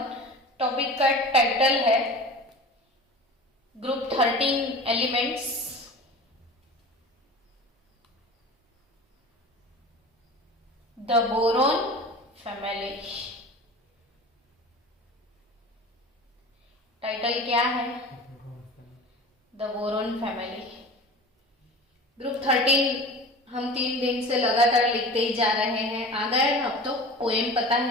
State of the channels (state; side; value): normal; both; correlation 0.37